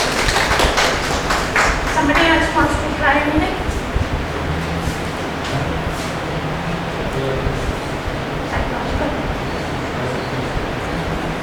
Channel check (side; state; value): both; identical; correlation 1.00